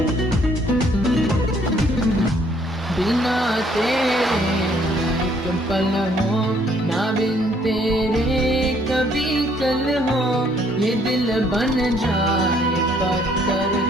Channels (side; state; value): both; normal; correlation 0.65